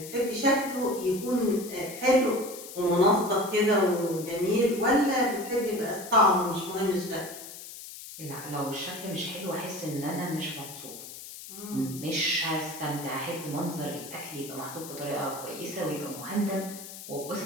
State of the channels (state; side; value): noise; left; hiss, 13 dB below the sound